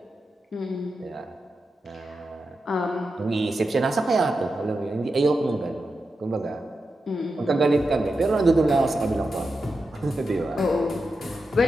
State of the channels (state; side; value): normal; both; correlation 0.89